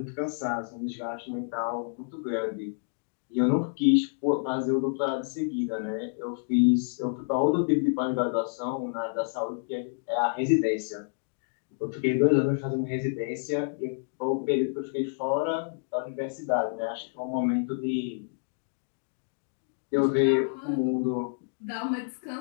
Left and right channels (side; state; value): right; silent; digital silence